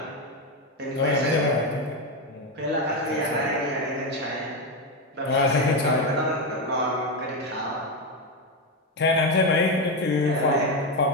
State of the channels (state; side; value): normal; both; correlation 0.10